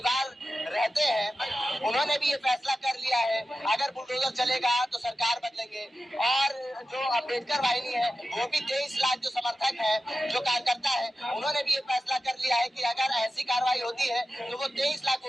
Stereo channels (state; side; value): normal; both; correlation 0.92